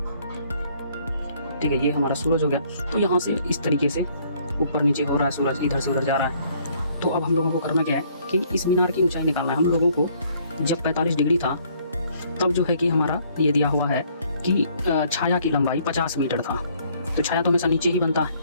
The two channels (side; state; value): both; inverted; correlation -0.63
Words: ठीक है, ये हमारा सूरज हो गया। तो यहाँ से इस तरीके से ऊपर नीचे हो रहा है सूरज, इधर से उधर जा रहा है। तो अब हम लोगों को करना क्या है कि इस मीनार की ऊंचाई निकालना है। हम लोगों को जब 45 डिग्री था तब जो है कि हमारा ये दिया हुआ है कि छाया की लंबाई 50 मीटर था, तो छाया तो हमेशा नीचे ही बनता है।